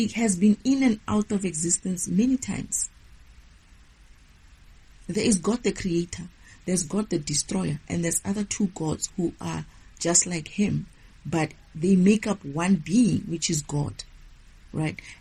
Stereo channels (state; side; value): identical; both; correlation 1.00